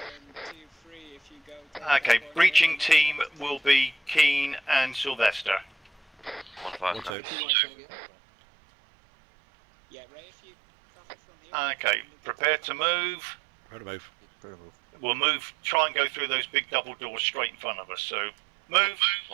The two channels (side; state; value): left; drops out; at 7.2 s